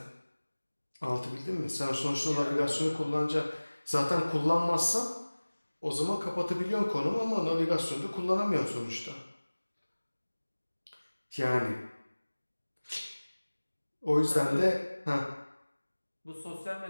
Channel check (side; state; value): both; inverted; correlation -1.00